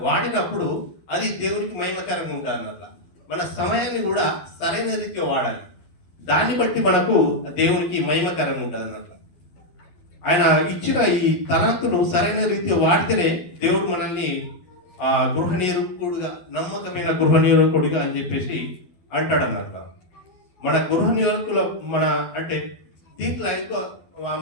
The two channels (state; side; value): late; right; 11 ms